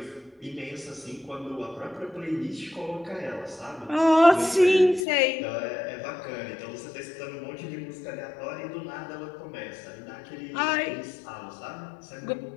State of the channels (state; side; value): drops out; right; at 5.1 s